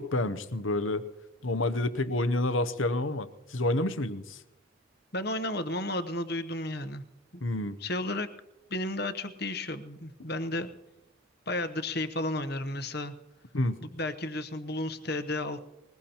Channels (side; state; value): both; normal; correlation 0.36